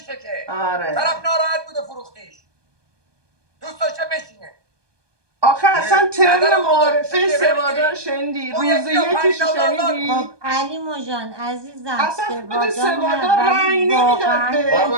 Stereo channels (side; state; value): left; late; 1.2 ms